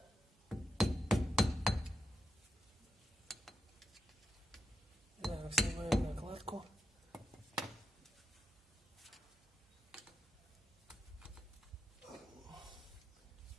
Так, снимаем накладку.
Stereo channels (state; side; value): normal; both; correlation 0.87